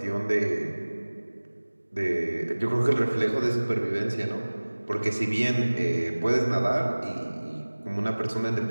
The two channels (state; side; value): inverted; both; correlation -1.00